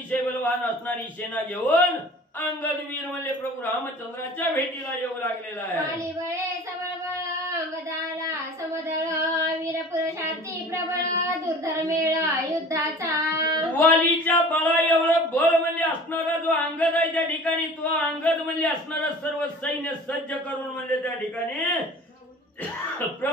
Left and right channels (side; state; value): both; normal; correlation 0.43